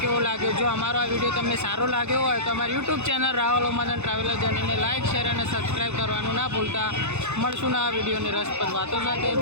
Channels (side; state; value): left; late; 0.82 ms